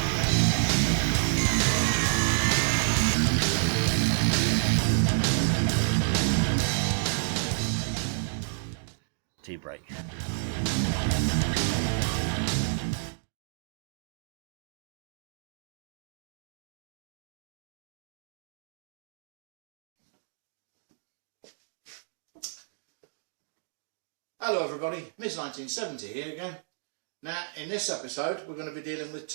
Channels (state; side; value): silent; left; digital silence